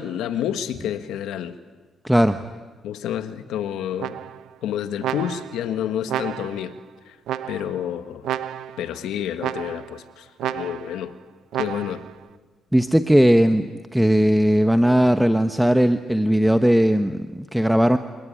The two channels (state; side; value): normal; both; correlation 0.91